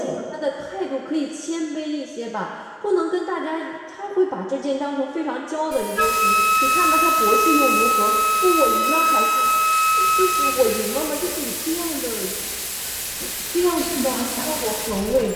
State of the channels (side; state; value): both; identical; correlation 1.00